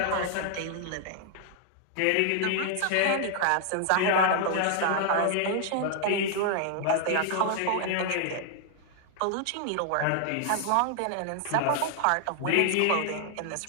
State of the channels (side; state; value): both; different; correlation 0.00